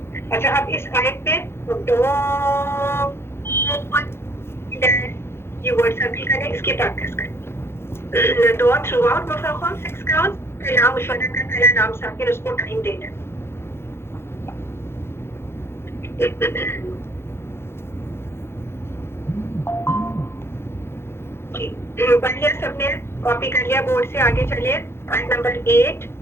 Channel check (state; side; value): late; right; 0.12 ms